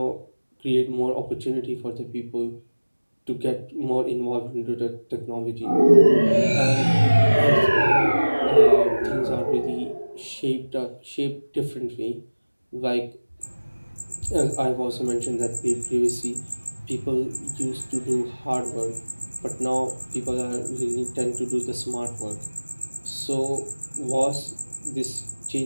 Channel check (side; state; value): both; inverted; correlation -1.00